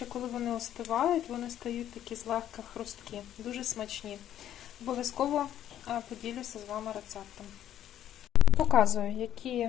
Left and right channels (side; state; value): right; quieter; 11.3 dB